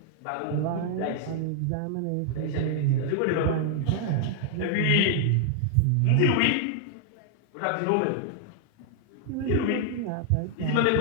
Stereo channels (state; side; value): different; both; correlation 0.00